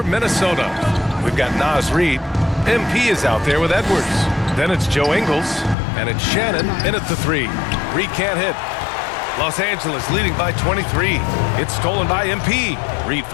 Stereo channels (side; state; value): right; drops out; at 5.8 s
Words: Minnesota, we've got Naz Reid. MP is out there with Edwards. Then it's Joe Ingles, and it's Shannon in at the 3. Reid can't hit. Los Angeles leading by 23. It's stolen by MP. Reid